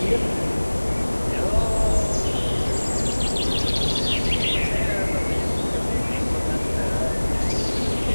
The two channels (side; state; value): both; inverted; correlation -1.00